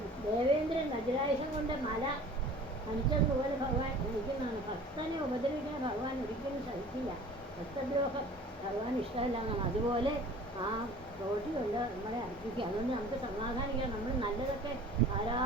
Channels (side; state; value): both; normal; correlation 0.45